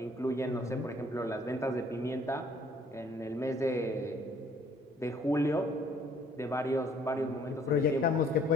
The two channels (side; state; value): both; normal; correlation 0.61